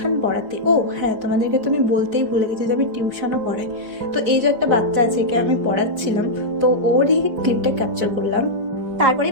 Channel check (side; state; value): left; late; 4.9 ms